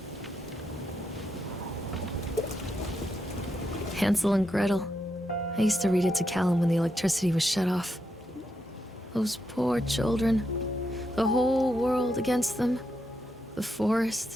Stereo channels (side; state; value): both; normal; correlation 0.82